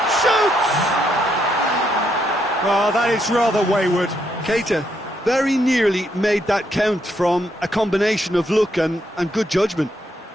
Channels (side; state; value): both; normal; correlation 0.76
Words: shoots! Well, that is rather wayward. Keita very nearly made that count from a combination of luck and good judgment.